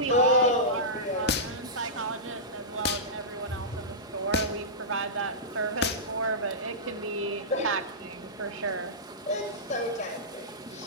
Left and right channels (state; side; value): normal; both; correlation -0.16